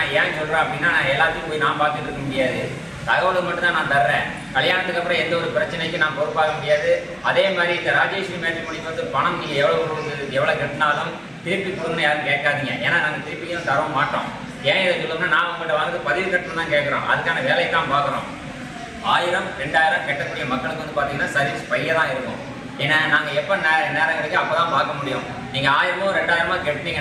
ஏன் சொல்கிறேன் அப்படின்னா, நான் எல்லாத்தையும் போய் நான் பார்த்துட்டு இருக்க முடியாது. தகவலை மட்டும்தான் நான் தர்றேன். கல்யாணத்துக்கு அப்புறம் எந்த ஒரு பிரச்சனைக்கும் நான் பொறுப்பாக முடியாது. அதே மாதிரி இந்த ராஜேஸ்வரி மேட்ரிமோனிக்கு வந்து பணம் நீங்கள் எவ்வளோ கட்டினாலும் திருப்பி கொடுங்கன்னு யாரும் கேட்காதீங்க. ஏன்னா நாங்கள் திருப்பியும் தர மாட்டோம். ஏன் இதை சொல்லணும்னா, நான் உங்கள்கிட்ட வந்து பதிவு கட்டணும் தான் கேட்குறோம். அதுக்கான வேலையை தான் பார்க்குறோம். 1000 2000 கட்டக்கூடிய மக்களுக்கு வந்து பார்த்தீங்கன்னா சர்வீஸ் பைய தான் இருக்கும். ஏன்னா நாங்கள் எப்போ நேரம் கிடைக்கும் அப்போ தான் பார்க்க முடியும். நீங்கள் 1000 2000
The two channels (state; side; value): identical; both; correlation 1.00